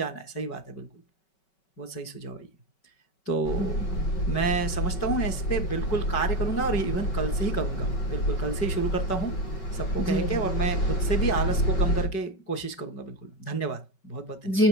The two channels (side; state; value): right; late; 5.3 ms